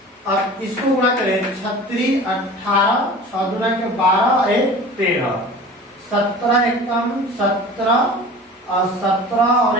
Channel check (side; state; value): both; normal; correlation 0.40